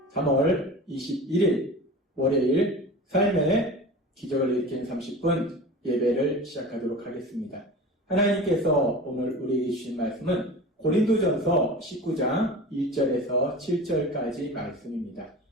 3월 21일 월요일 삶의 기적을 일으키는 30분 예배를 시작하도록 하겠습니다. 하나님께서 오늘 우리에게 주신 말씀은 고린도전서 19장 1절에서 7절까지 말씀입니다.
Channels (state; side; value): normal; both; correlation 0.34